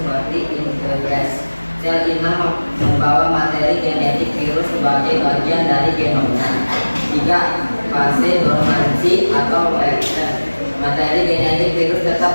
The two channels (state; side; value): inverted; both; correlation -1.00